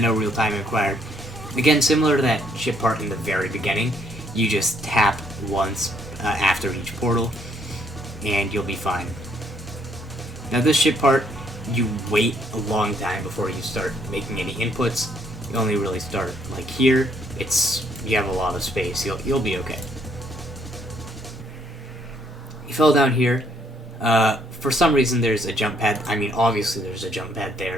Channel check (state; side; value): normal; both; correlation 0.70